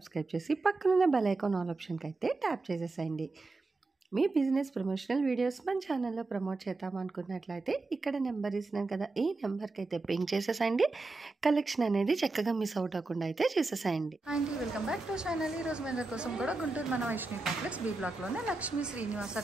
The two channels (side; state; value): left; quieter; 3.4 dB